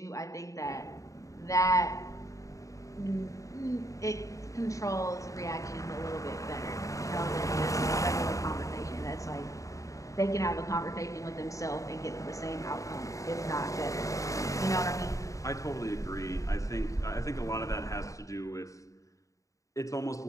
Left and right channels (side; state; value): right; late; 0.16 ms